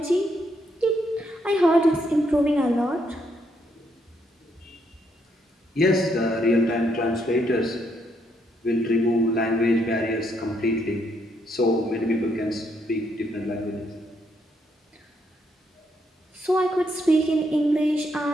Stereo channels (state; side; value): normal; both; correlation 0.75